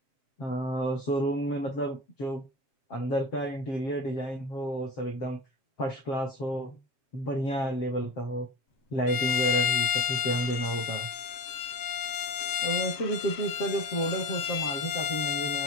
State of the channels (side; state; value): right; late; 7.5 ms